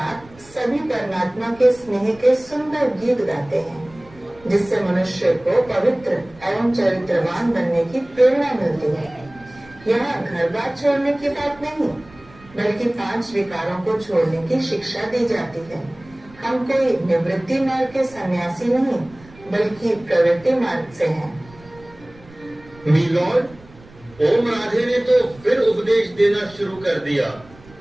सभी परमात्मा के स्नेह के सुंदर गीत गाते हैं जिससे मनुष्य को पवित्र एवं चरित्रवान बनने की प्रेरणा मिलती है। यहाँ घर बार छोड़ने की बात नहीं बल्कि 5 विकारों को छोड़ने की शिक्षा दी जाती है। हम कोई निवृत्ति मार्ग के सन्यासी नहीं बल्कि प्रवृत्ति मार्ग से हैं। मिलॉर्ड, ओम राधे ने तो फिर उपदेश देना शुरू कर दिया,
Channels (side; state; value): right; noise; rumble, 24 dB below the sound